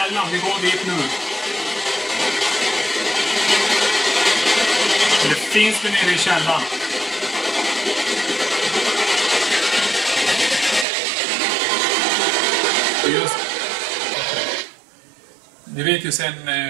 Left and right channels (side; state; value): left; drops out; at 10.9 s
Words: Vi går dit nu. Eller finns det nere i källan? Just Vi vet ju sen